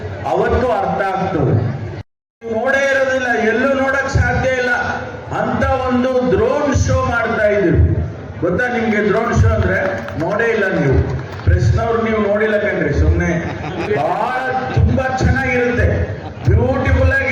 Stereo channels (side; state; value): both; identical; correlation 1.00